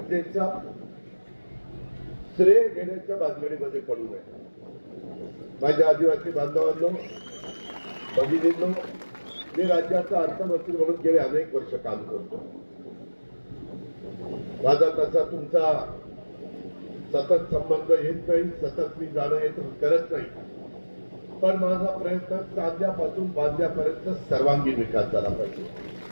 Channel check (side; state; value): both; inverted; correlation -1.00